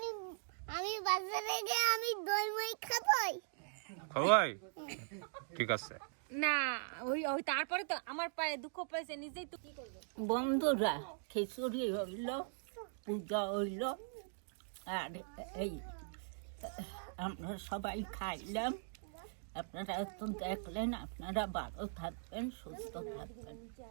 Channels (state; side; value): silent; left; digital silence